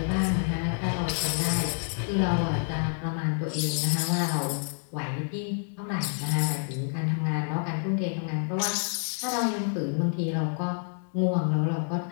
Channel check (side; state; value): right; silent; 59 dB below the other